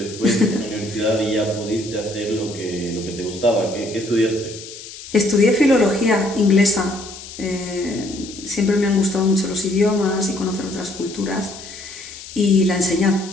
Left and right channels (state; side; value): noise; left; hiss, 14 dB below the sound